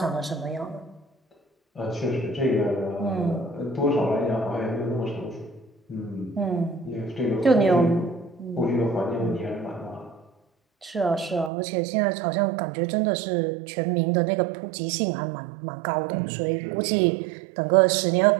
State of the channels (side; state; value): left; drops out; at 11.5 s